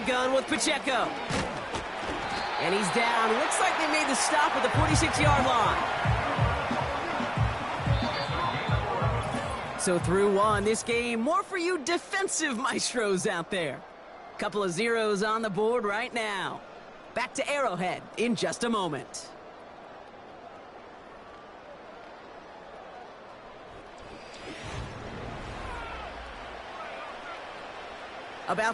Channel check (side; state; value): both; identical; correlation 1.00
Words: gun with Pacheco. And he's down. Looks like they made the stop at the 46-yard line. So through one, this game, more for you defensive maestros out there. Couple of zeros on the board right now. Back to Arrowhead in just a moment.